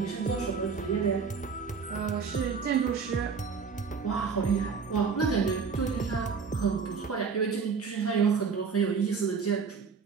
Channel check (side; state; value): left; quieter; 5.5 dB